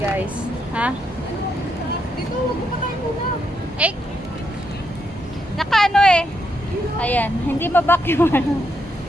Ha? Dito, wag mo pa tayo muna. Eh! Nakaano eh. Ayan. Hindi mabak yung ano.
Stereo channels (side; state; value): both; normal; correlation 0.79